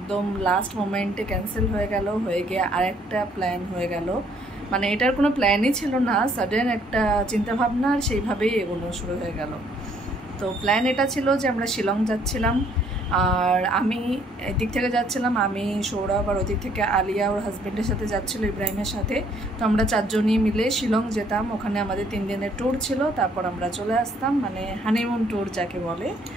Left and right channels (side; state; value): both; normal; correlation 0.64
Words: লাস্ট মোমেন্টে ক্যান্সেল হয়ে গিয়ে আরেকটা প্ল্যান হয়ে গেল। মানে এটার কোনো প্ল্যানই ছিল না, সাডেন একটা চিন্তাভাবনা, আর সেইভাবেই এগোনো শুরু হয়ে গেল। তো প্ল্যান এটা ছিল যে আমরা শিলং যাচ্ছিলাম, আর আমি এদিক থেকে যাচ্ছিলাম, আমি সৌরভ, আর ওদিক থেকে আলিয়া ওর হাজব্যান্ডের সাথে যাচ্ছিলো, ইব্রাহিমের সাথে। তো আমরা চারজনই মিলে শিলং যেতাম। ওখানে আমাদের 3 দিনের ট্যুর ছিল, তারপর আমরা চলে আসতাম, মানে হানিমুন ট্যুর যাকে বলে।